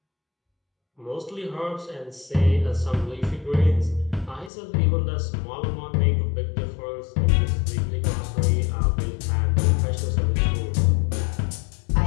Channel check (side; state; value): right; drops out; at 4.5 s